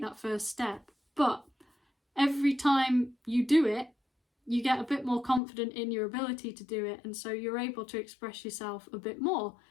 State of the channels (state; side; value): drops out; right; at 5.4 s